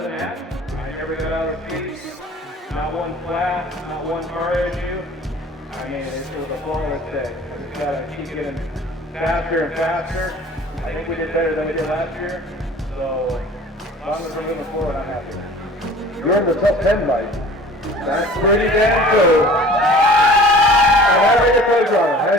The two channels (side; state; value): both; normal; correlation 0.45